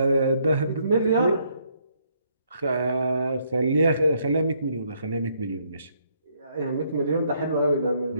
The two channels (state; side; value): inverted; both; correlation -0.70